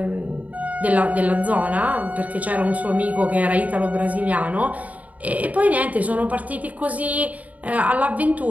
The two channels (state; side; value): late; left; 0.072 ms